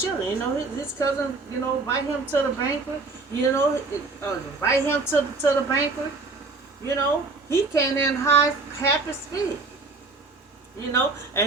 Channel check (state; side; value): quieter; left; 3.8 dB